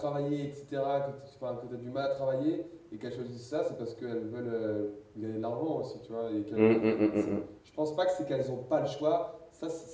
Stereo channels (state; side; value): identical; both; correlation 1.00